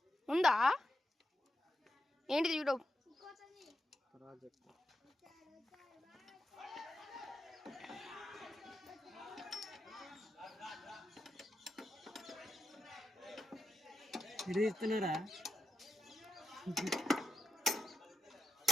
ఉందా? ఏంటిది యూట్యూబ్ ప్రాజెక్ట్? ఇది ఇస్తున్నారా?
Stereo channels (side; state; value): both; normal; correlation 0.88